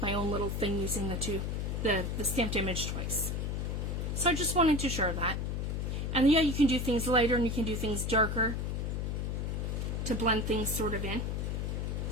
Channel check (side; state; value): left; noise; hum, 1 dB below the sound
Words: own little thing using the stamped image twice. So I just wanted to share that. And yeah, you can do things lighter, and you can do things darker to blend things sort of in.